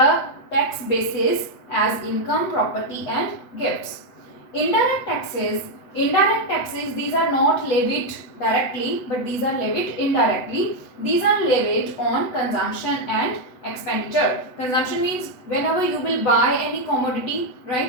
tax basis as income, property and gifts. Indirect taxes, these are not levied directly, but these are levied indirectly. These are levied on consumption and expenditure. Consumption means whenever you will buy any commodity,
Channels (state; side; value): late; right; 8.2 ms